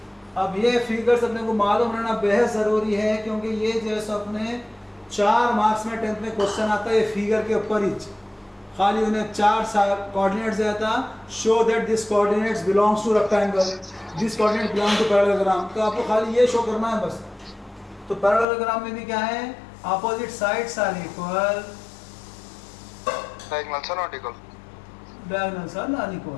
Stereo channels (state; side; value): drops out; right; at 18.4 s